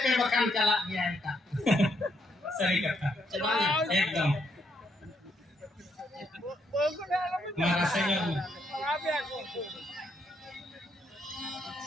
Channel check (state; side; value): normal; both; correlation 0.75